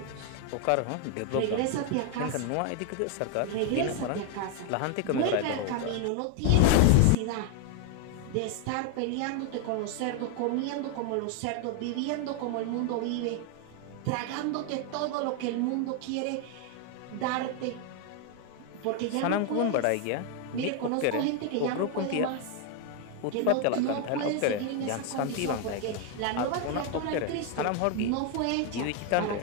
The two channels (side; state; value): both; different; correlation 0.01